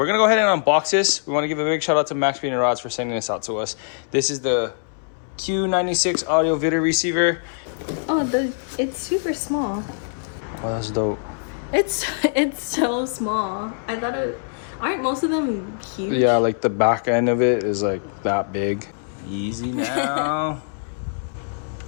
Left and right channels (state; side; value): silent; right; 64 dB below the other